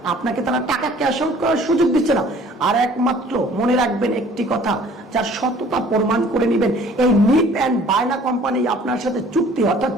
আপনাকে তারা টাকা ক্যাশ আউট করার সুযোগ দিচ্ছে না। আর একমাত্র মনে রাখবেন একটি কথা, যার সততা প্রমাণ করে নেবেন, এই নিপ অ্যান্ড বায়না কোম্পানি আপনার সাথে চুক্তি, অর্থাৎ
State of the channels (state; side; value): normal; both; correlation 0.52